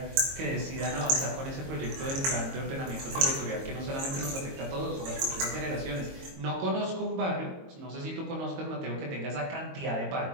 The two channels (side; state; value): left; late; 22 ms